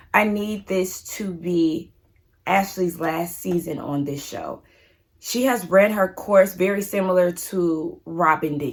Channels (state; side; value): identical; both; correlation 1.00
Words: I need this to be Ashley's last season on this show. She has ran her course very similar to Robin